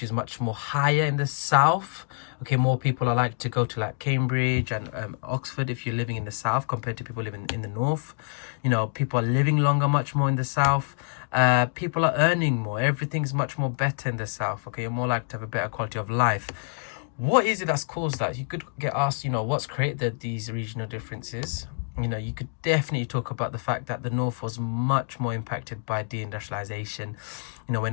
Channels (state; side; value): silent; right; digital silence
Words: is much more higher in the south. Okay, more people are like to go to like Cambridge and Oxford if you're living in the south compared to people living in the north. You know, people are living longer much more in the south. People are earning more. Everything's much more better in the south. Okay, you're more likely to have a better quality of life. What is it that's caused that? You could get asked, you know, what's created these regional differences? You know, you could definitely talk about the fact that the north was much more impacted by deindustrialization. You know,